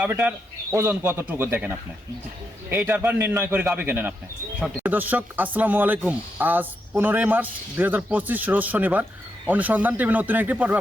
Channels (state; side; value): normal; both; correlation 0.83